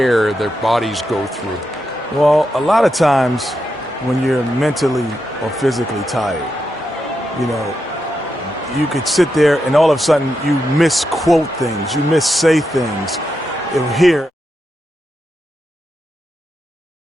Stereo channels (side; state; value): both; normal; correlation 0.85